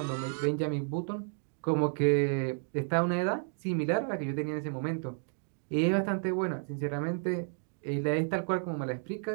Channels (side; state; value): left; silent; 57 dB below the other